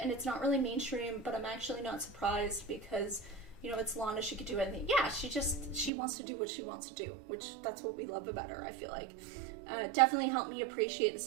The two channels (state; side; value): drops out; left; at 5.9 s